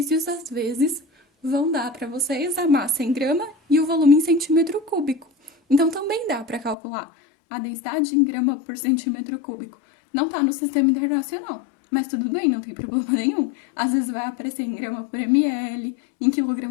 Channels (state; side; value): drops out; right; at 6.8 s